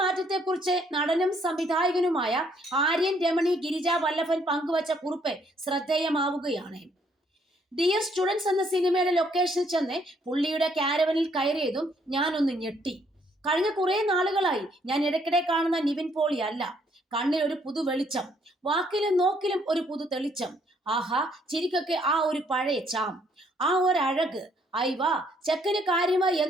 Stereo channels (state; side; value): normal; both; correlation 0.68